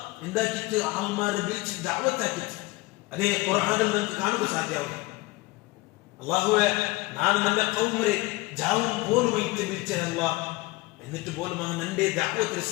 എന്താക്കിയിട്ട് ആൾമാരെ വിളിച്ച് ദഅവത്താക്കിയിട്ട് അതേ ഖുർആനിൽ നമുക്ക് കാണുക സാധ്യമാവും അല്ലാഹുവേ ഞാൻ എൻ്റെ ഖൗമിനെ ജാവും പോലുമായിട്ട് വിളിച്ച അല്ലാഹ് എന്നിട്ട് പോലും അവൻ എന്റെ ദഅവത്ത്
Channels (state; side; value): quieter; right; 22.1 dB